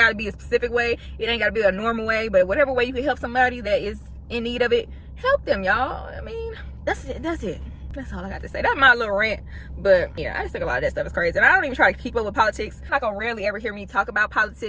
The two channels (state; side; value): identical; both; correlation 1.00